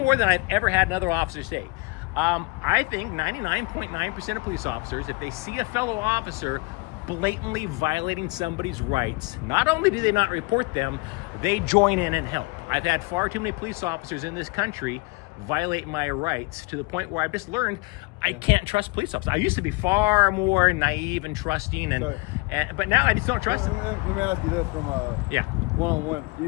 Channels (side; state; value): right; quieter; 26.9 dB